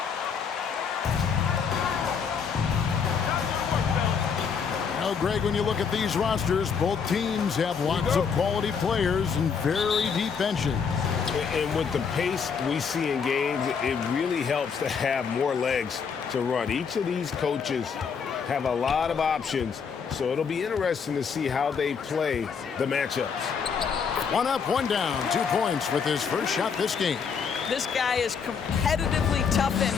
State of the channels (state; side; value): quieter; right; 6.3 dB